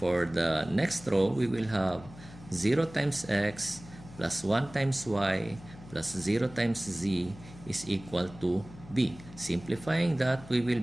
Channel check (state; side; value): noise; left; hum, 18 dB below the sound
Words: the next row, we will have 0 times x plus 1 times y plus 0 times z is equal to b. Simplifying that, we will